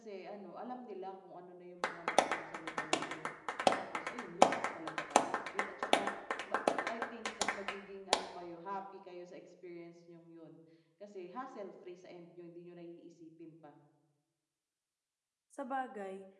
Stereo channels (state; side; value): identical; both; correlation 1.00